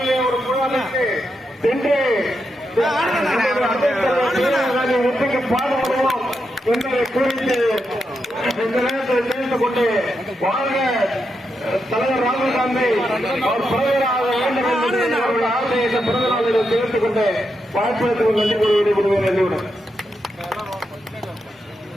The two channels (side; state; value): both; normal; correlation 0.84